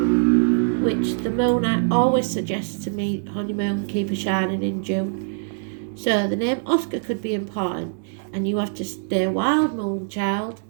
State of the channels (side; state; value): left; silent; digital silence